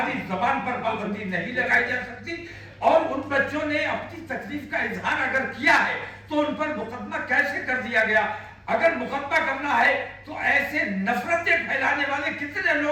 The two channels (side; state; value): both; identical; correlation 1.00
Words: जबान पर पाबंदी नहीं लगाई जा सकती। और उन बच्चों ने अपनी तकलीफ का इजहार अगर किया है तो उन पर मुकदमा कैसे कर दिया गया? अगर मुकदमा करना है तो ऐसे नफरतें फैलाने वाले कितने